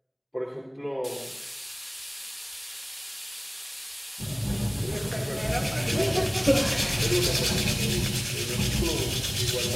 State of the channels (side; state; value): both; identical; correlation 1.00